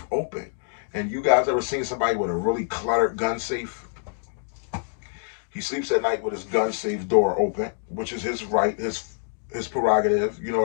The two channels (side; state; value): right; silent; digital silence